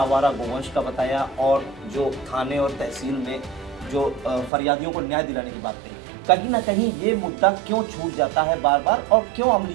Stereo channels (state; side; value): drops out; left; at 4.5 s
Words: गोवंश का बताया और जो थाने और तहसील में जो फरियादियों को न्याय दिलाने की बात कही। कहीं ना कहीं ये मुद्दा क्यों छूट जाता है बार बार और क्यों